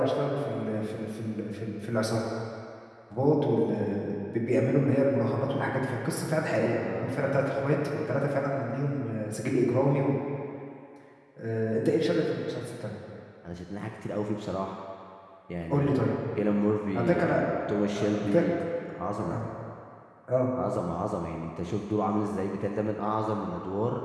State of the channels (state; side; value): identical; both; correlation 1.00